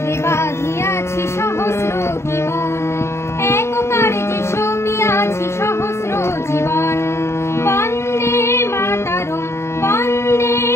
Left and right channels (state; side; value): late; right; 0.13 ms